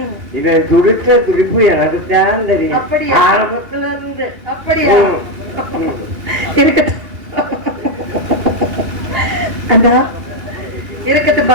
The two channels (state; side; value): late; left; 2.3 ms